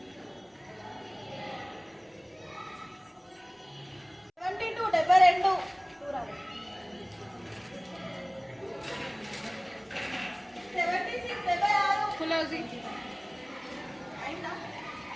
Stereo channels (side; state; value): both; identical; correlation 1.00